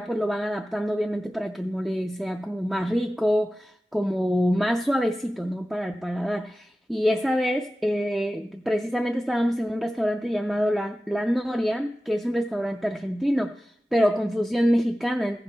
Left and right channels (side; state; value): both; normal; correlation 0.95